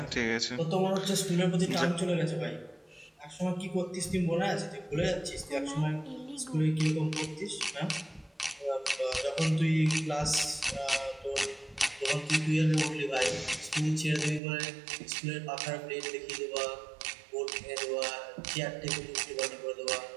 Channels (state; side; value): drops out; left; at 14.4 s